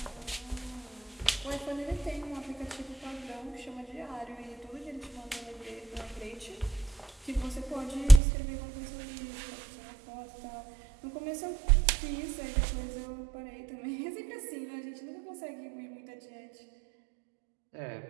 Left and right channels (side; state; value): left; drops out; at 8.2 s